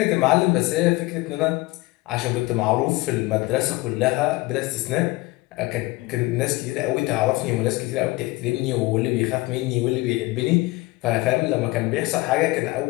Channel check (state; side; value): quieter; right; 21.5 dB